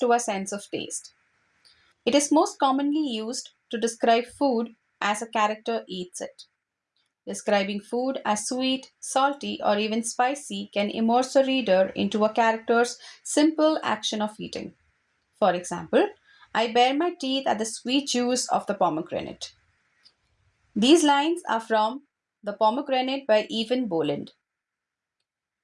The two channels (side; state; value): both; identical; correlation 1.00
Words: a sense of taste. It is most commonly used to describe food as a character eats it. Describing food as sweet, salty, or even spicy can immerse a reader into a character's simple action of eating. For example, I bare my teeth at the sweet juice of the pomegranate. These lines are from The Pomegranate by Evan Boland.